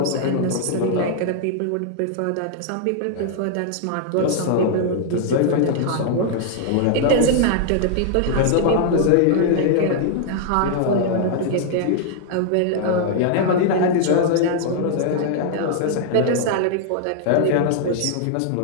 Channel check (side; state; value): both; different; correlation -0.01